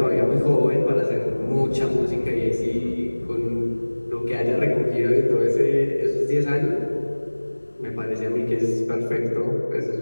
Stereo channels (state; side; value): inverted; both; correlation -1.00